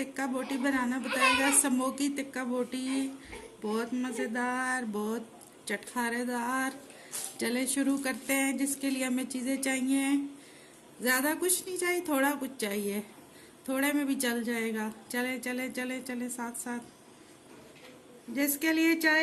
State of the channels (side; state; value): both; identical; correlation 1.00